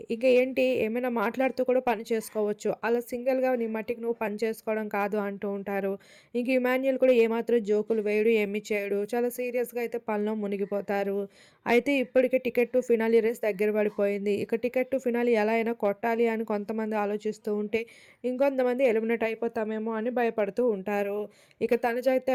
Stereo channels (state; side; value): identical; both; correlation 1.00